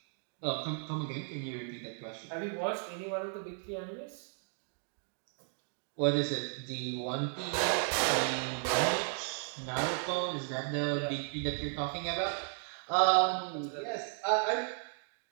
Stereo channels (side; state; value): left; silent; 55 dB below the other